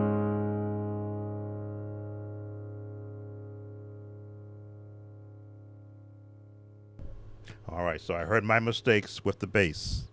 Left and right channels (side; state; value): both; identical; correlation 1.00